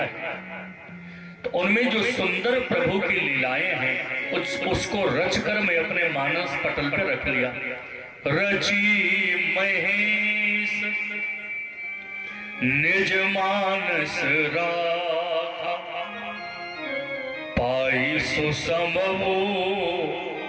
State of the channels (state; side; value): identical; both; correlation 1.00